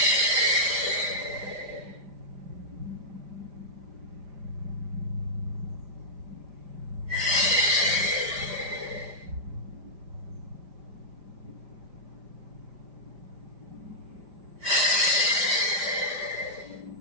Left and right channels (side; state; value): left; late; 5.0 ms